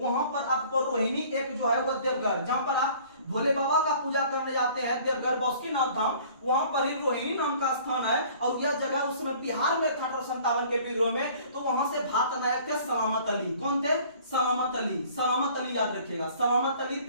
पर आपको रोहिणी एक जो है वो देवघर, जहां पर आप भोले बाबा का पूजा करने जाते हैं, देवघर बासुकीनाथ धाम, वहां पर ही रोहिणी नाम का स्थान है। और यह जगह उस समय बिहार में था 1857 के विद्रोह में। तो वहां से भारत नायक थे सलामत अली। कौन थे? सलामत अली। सलामत अली याद रखिएगा, सलामत अली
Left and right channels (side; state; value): both; inverted; correlation -0.52